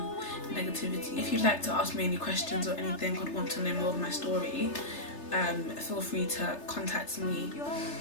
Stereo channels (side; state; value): right; late; 3.3 ms